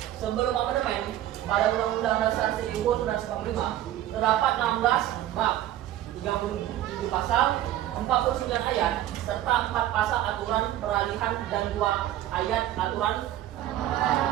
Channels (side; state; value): left; quieter; 13.1 dB